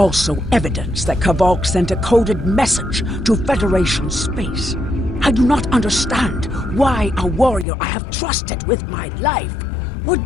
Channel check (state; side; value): drops out; right; at 7.7 s